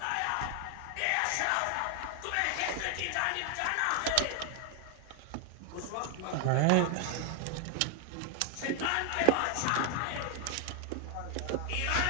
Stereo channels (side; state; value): both; different; correlation 0.00